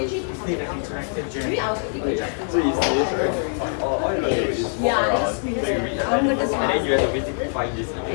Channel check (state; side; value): silent; right; 58 dB below the other